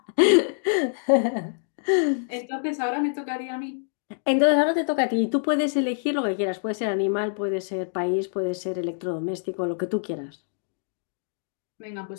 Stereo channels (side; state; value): right; silent; digital silence